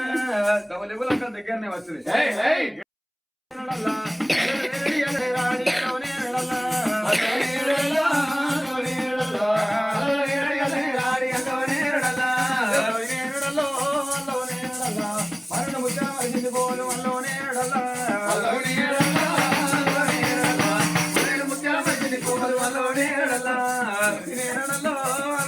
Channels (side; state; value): both; identical; correlation 1.00